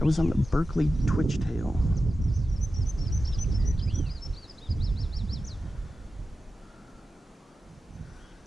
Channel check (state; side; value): normal; both; correlation 0.92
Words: was on the Berkeley twitch tail.